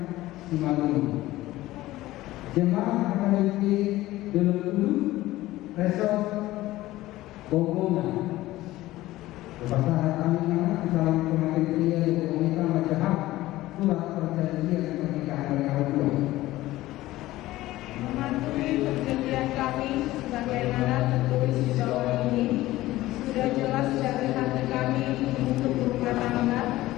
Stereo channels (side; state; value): right; quieter; 16.8 dB